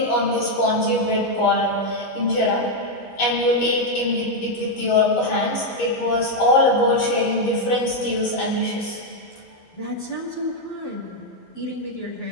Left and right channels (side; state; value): right; late; 12 ms